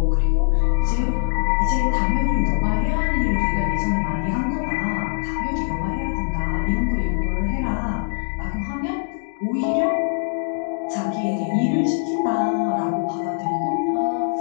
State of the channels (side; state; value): right; silent; digital silence